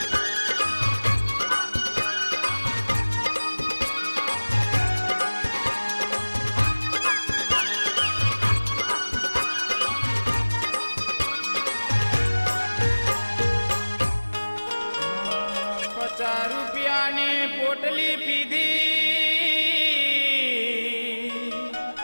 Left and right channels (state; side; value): inverted; both; correlation -1.00